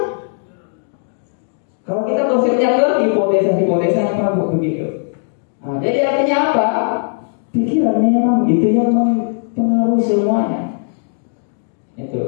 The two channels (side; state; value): right; silent; digital silence